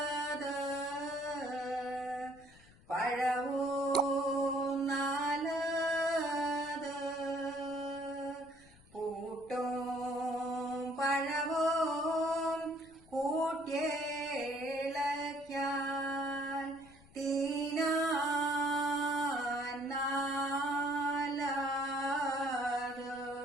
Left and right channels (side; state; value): left; noise; rumble, 25 dB below the sound